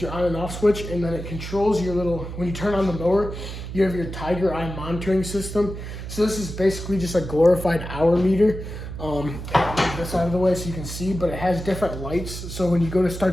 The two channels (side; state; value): right; noise; hum, 8 dB below the sound